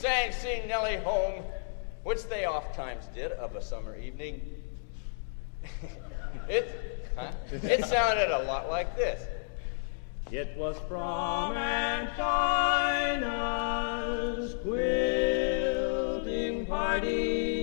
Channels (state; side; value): silent; right; digital silence